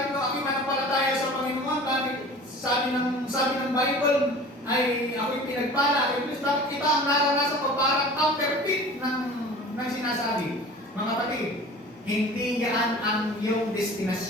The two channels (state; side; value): normal; both; correlation 0.41